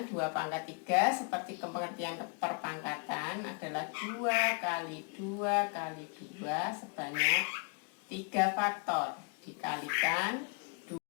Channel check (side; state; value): right; quieter; 34.9 dB